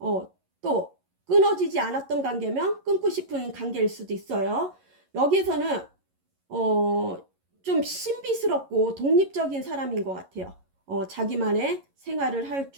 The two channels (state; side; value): late; left; 11 ms